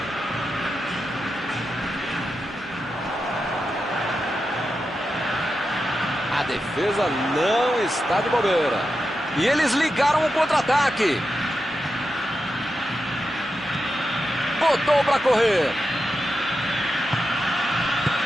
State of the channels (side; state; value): both; normal; correlation 0.89